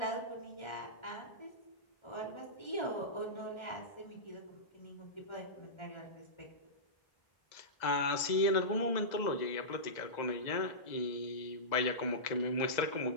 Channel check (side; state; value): right; late; 2.0 ms